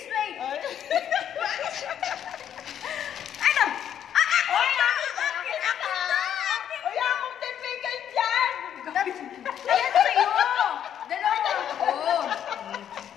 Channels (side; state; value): right; quieter; 9.6 dB